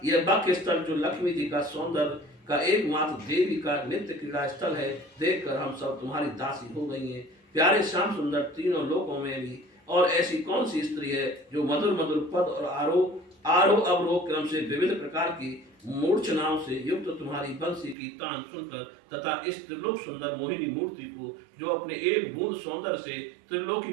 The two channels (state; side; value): drops out; left; at 17.9 s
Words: यह वक्ष स्थल जो लक्ष्मी जी का सौंदर्य का एकमात्र देवी का नित्य क्रीड़ा स्थल है, देखकर हम सब तुम्हारी दासी हो गई हैं। प्यारे श्याम सुंदर, तीनों लोकों में भी और ऐसी कौन सी स्त्री है जो मधुर मधुर पद और आरोह अवरोह क्रम से विविध प्रकार की मूर्छनाओं से युक्त तुम्हारी बंसी की तान सुनकर तथा इस त्रिलोक सुंदर मोहिनी मूर्ति को जो अपने एक बूंद सौंदर्य से